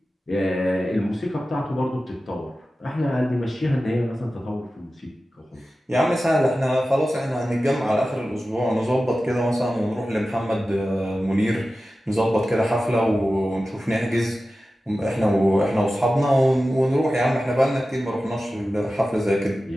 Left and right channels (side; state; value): both; normal; correlation 0.94